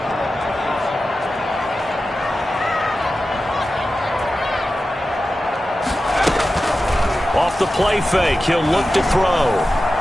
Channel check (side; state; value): both; normal; correlation 0.93